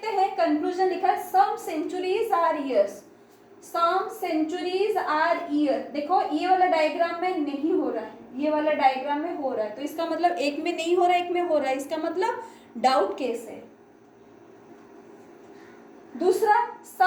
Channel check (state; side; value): identical; both; correlation 1.00